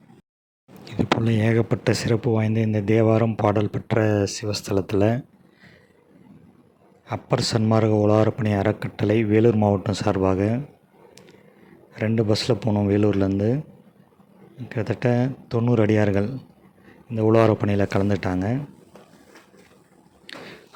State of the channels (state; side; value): identical; both; correlation 1.00